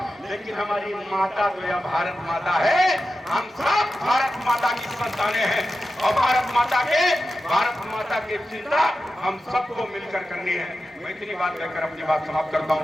लेकिन हमारी माता तो यह भारत माता है। हम सब भारत माता की संतानें हैं, और भारत माता की चिंता हम सबको मिलकर करनी है। मैं इतनी बात कहकर अपनी बात समाप्त करता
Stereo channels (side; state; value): both; normal; correlation 0.92